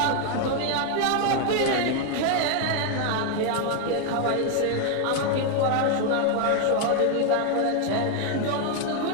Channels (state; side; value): different; both; correlation 0.01